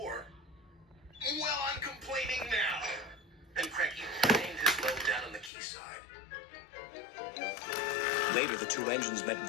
"Well, I'm complaining now." And Cranky claimed his load down on the quayside. Later, the two engines met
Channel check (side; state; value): right; drops out; at 5.5 s